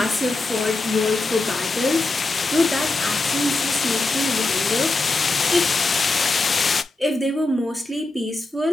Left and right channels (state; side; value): quieter; right; 3.1 dB